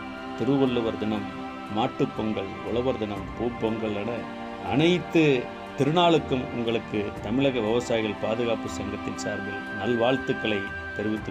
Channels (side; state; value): both; identical; correlation 1.00